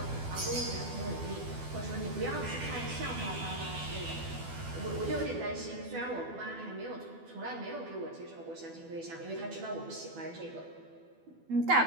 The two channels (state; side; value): late; left; 12 ms